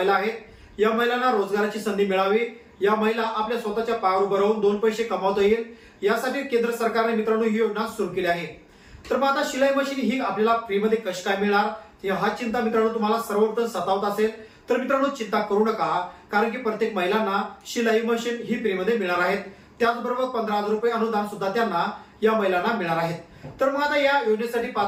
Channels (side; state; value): both; identical; correlation 1.00